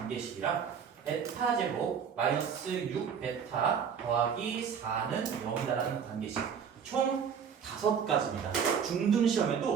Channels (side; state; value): left; quieter; 7.2 dB